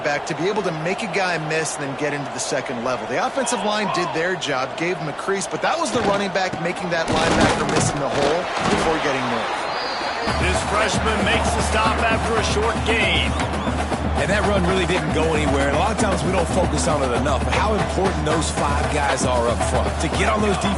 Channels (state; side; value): identical; both; correlation 1.00